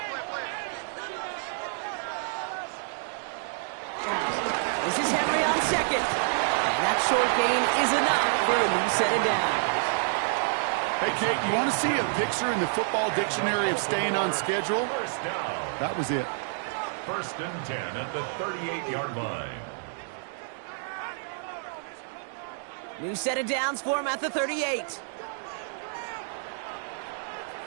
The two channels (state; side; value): silent; left; digital silence